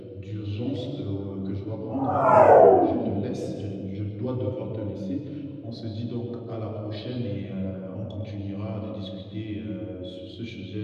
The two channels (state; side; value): identical; both; correlation 1.00